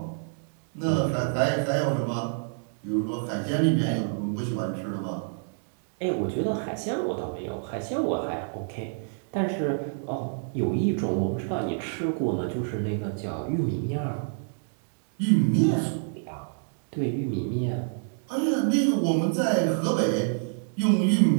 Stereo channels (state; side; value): silent; left; digital silence